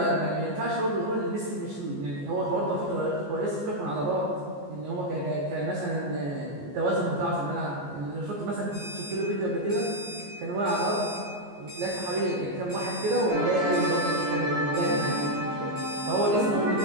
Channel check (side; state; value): left; late; 14 ms